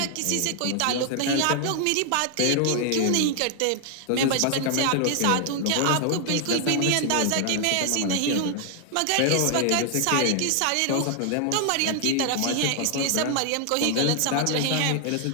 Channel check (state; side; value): different; both; correlation 0.00